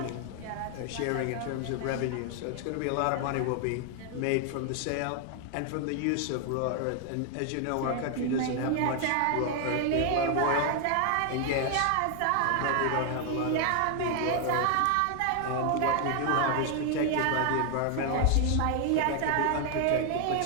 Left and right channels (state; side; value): different; both; correlation 0.00